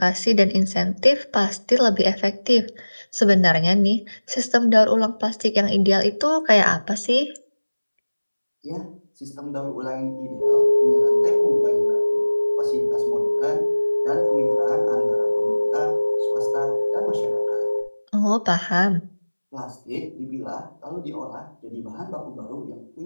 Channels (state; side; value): inverted; both; correlation -1.00